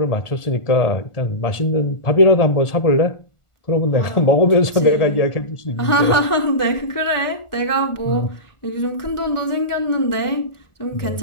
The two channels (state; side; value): late; right; 1.4 ms